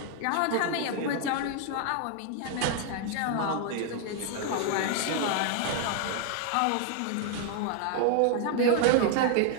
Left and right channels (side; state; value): both; different; correlation 0.00